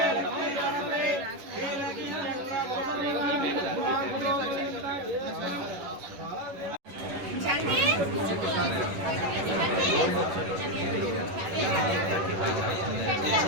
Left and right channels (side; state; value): left; late; 11 ms